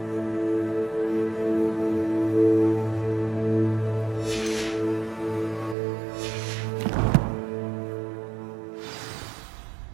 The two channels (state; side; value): drops out; left; at 5.8 s